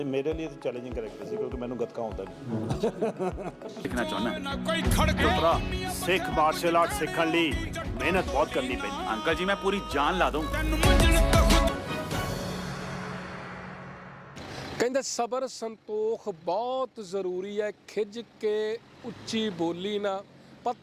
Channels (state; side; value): identical; both; correlation 1.00